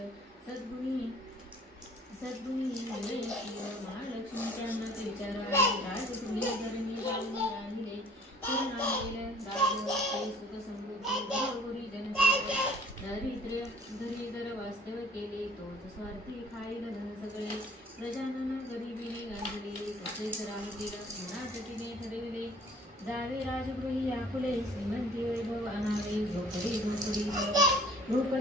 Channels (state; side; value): normal; both; correlation 0.53